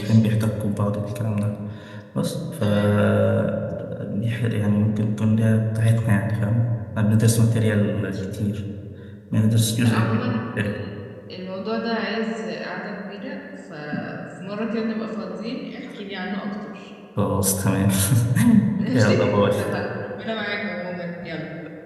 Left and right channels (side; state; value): both; identical; correlation 1.00